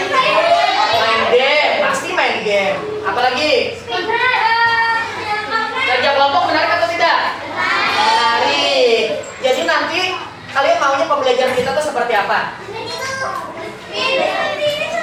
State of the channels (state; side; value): identical; both; correlation 1.00